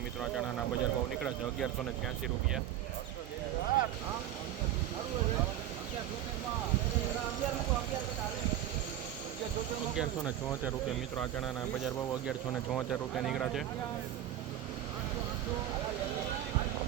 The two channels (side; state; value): left; quieter; 11.5 dB